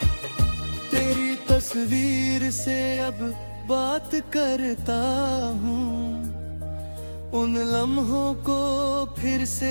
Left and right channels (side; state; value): both; inverted; correlation -1.00